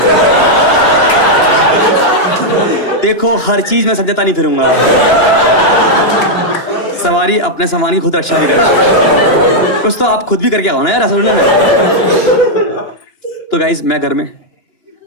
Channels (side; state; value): right; late; 2.9 ms